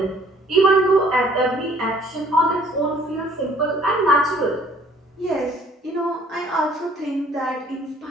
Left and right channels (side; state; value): both; normal; correlation 0.57